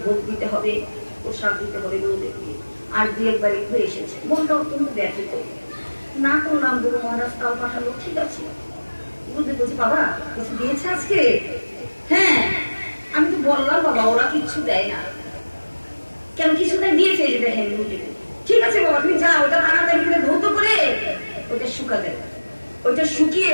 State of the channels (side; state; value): both; inverted; correlation -1.00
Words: ভোগ দিতে হবে, প্রসাদ দিতে হবে গুরুদেবকে, আর 2 বাড়ি ঘুরে এসেছে। মনটা অত্যন্ত ব্যথিত, না করলাম, গুরু মহারাজ তাও পাঠালো, ঠিক আছে। গুরুদেব বলছে বাবা কিছু দিয়েছে আজকে? হ্যাঁ, আমি তো বললাম বাবা ওরা কিচ্ছু দেয় না। কেন কিছু দেয়? দিয়েছে, যে দেখেন গুরুদেব। ঠিক আছে বাবা তুমি যাও, ওটা তাড়াতাড়ি করে ধৌত করে ওটা শুকাতে, ওইটা শুকিয়ে